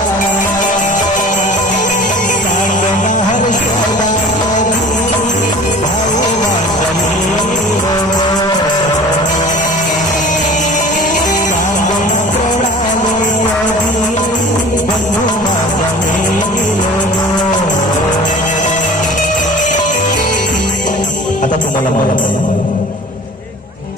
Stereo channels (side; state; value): both; normal; correlation 0.43